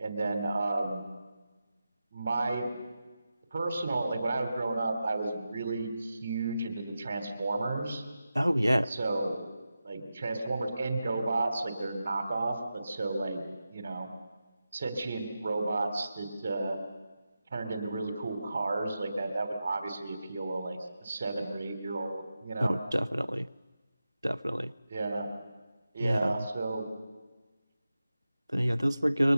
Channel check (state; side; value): inverted; both; correlation -0.92